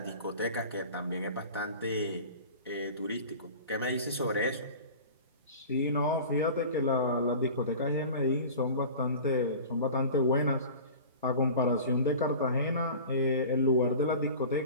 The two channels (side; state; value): both; inverted; correlation -0.38